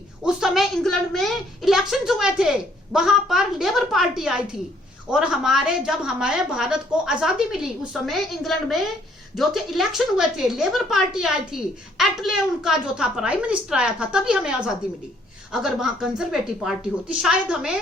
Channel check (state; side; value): normal; both; correlation 0.65